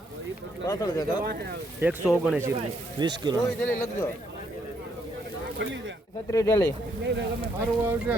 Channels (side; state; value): both; normal; correlation 0.72